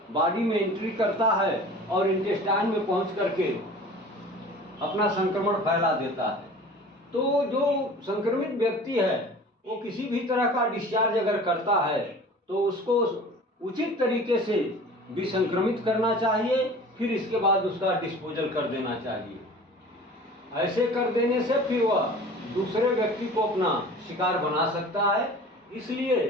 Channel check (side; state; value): both; normal; correlation 0.42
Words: बॉडी में एंट्री करता है और इंटेस्टाइन में पहुंच करके अपना संक्रमण फैला देता है। तो जो संक्रमित व्यक्ति है वो किसी भी तरह का डिस्चार्ज अगर करता है तो उसको उचित तरीके से विसंक्रमित करना चाहिए, फिर इसके बाद उसका डिस्पोजल कर देना चाहिए। ऐसे कर देने से फिर वह दूसरे व्यक्ति को अपना शिकार बना सकता है, इसलिए